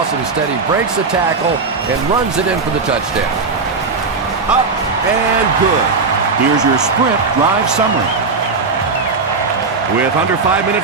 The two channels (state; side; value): quieter; left; 4.4 dB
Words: Instead, he breaks the tackle and runs it in for the touchdown. Up and good. Here's your sprint drive summary. With under 5